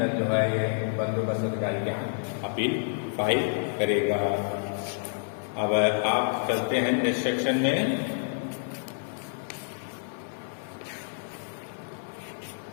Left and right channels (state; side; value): silent; right; digital silence